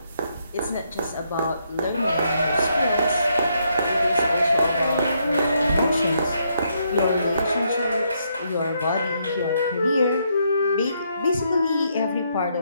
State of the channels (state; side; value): inverted; both; correlation -0.75